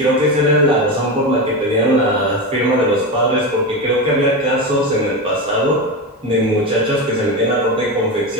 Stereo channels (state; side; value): normal; both; correlation 0.18